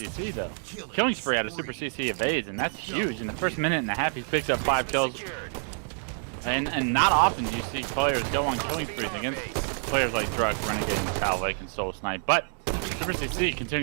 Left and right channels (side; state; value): left; silent; 60 dB below the other